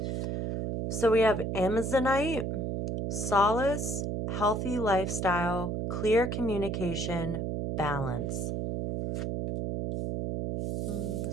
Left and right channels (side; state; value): right; noise; hum, 2 dB below the sound